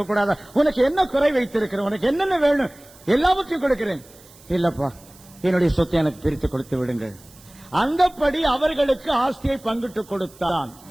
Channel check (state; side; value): noise; right; hiss, 24 dB below the sound